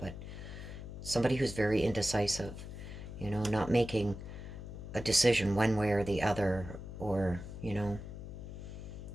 somebody who's very indecisive, you know, not making a decision one way or the other, or, you know,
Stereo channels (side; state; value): left; noise; hum, 10 dB below the sound